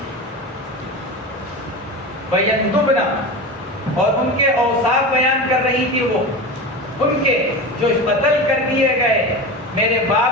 وَيَنْدُبْنَ، اور ان کے اوصاف بیان کر رہی تھی وہ، ان کے جو قتل کر دیے گئے میرے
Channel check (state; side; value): normal; both; correlation 0.27